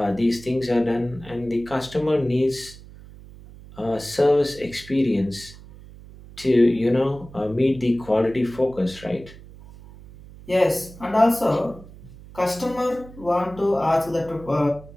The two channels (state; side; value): noise; right; hum, 19 dB below the sound